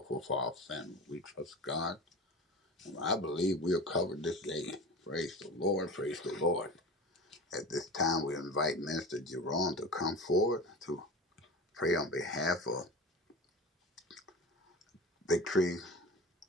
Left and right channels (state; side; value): normal; both; correlation 0.33